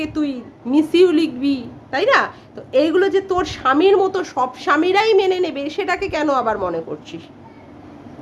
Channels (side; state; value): both; identical; correlation 1.00